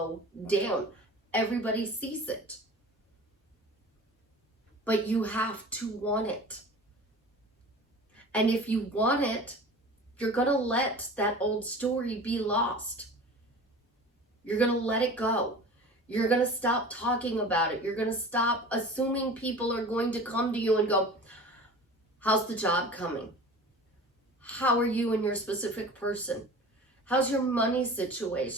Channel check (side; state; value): both; normal; correlation 0.39